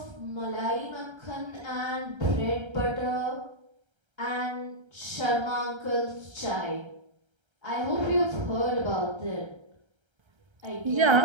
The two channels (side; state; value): left; late; 1.3 ms